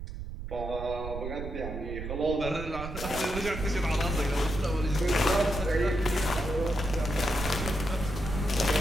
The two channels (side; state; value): right; noise; rumble, 7 dB below the sound